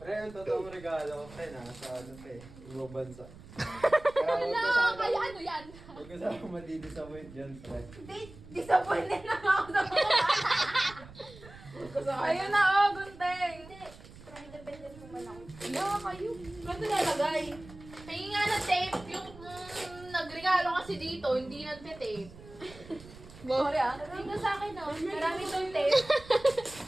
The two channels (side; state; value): right; noise; rumble, 19 dB below the sound